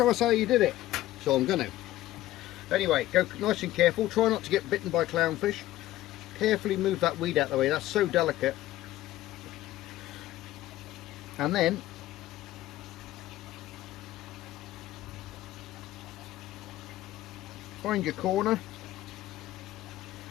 us how you did it. So I'm going to. Anyway, go nice and careful, try not to get bitten by clownfish. Carefully move that weed out of the way, that's so delicate. And then find your corner.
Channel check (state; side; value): quieter; right; 15.0 dB